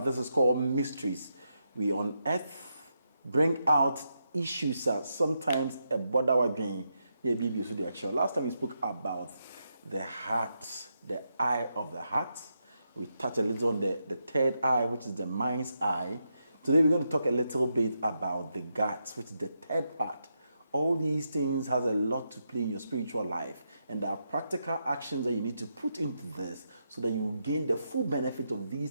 is called Mysteries. We unearth, bring out issues that sometimes a border again. Last time we spoke about the heart, the eye of the heart. We touched a little on the third eye, which is the mind's eye. Today we're going to talk a little bit about the guts, which is the third part. All these things has a lot to play in your spiritual life, and there are practical actions that you need to put into this so that you gain the full benefit of these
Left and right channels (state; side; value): inverted; both; correlation -0.83